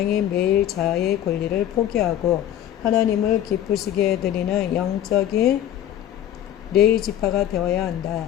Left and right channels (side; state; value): right; quieter; 11.3 dB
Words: 매일 자아의 권리를 포기하고 하나님을 기쁘시게 해드리는 영적인 레위 지파가 되어야 한다.